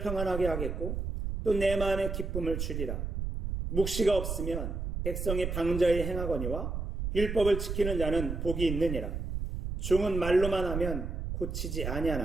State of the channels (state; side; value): noise; right; rumble, 4 dB below the sound